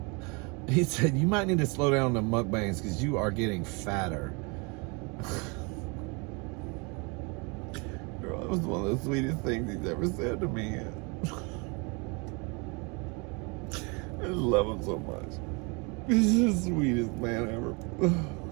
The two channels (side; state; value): left; quieter; 30.9 dB